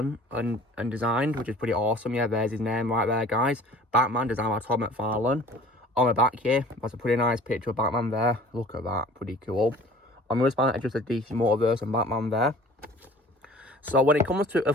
and designed, which is pretty awesome. Yeah, there's his name right there, guys. Batman, designed by Todd McFarlane. On the back here, that's a pretty nice picture of Batman there. Look at that, pretty cool. On the spine, it's just a DC Multiverse and Batman there. So when it comes to,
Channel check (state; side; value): normal; both; correlation 0.47